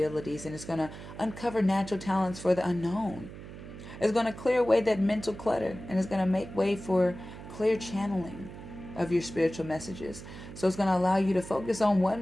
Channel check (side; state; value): right; noise; hum, 13 dB below the sound